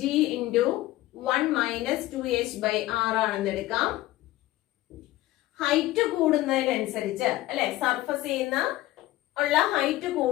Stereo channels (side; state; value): right; quieter; 16.5 dB